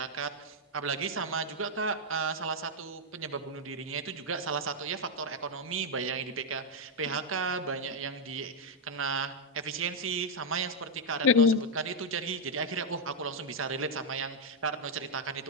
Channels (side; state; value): both; normal; correlation 0.00